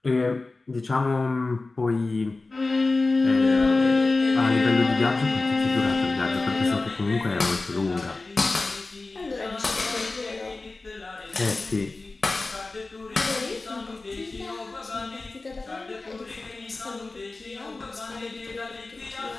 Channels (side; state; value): right; quieter; 3.4 dB